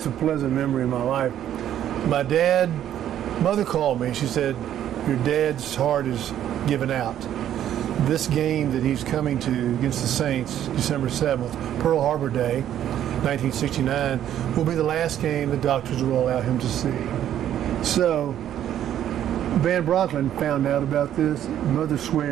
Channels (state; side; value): quieter; left; 11.0 dB